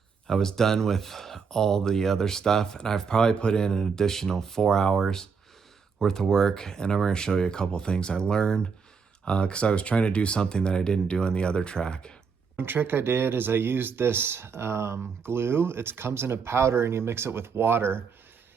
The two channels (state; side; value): quieter; left; 5.8 dB